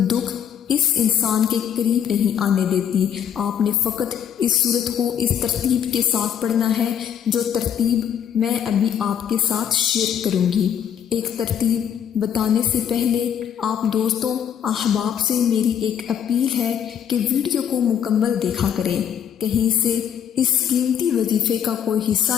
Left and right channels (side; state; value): right; quieter; 8.7 dB